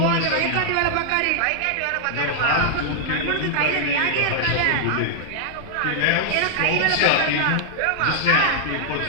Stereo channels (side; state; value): both; different; correlation -0.01